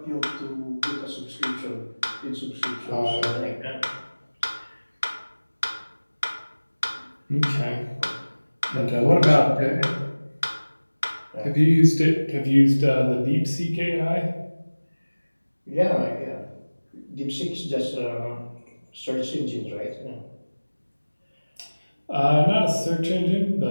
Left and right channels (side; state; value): both; inverted; correlation -1.00